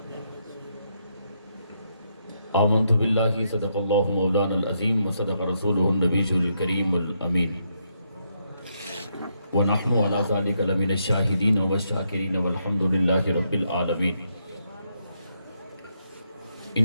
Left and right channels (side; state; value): both; inverted; correlation -0.78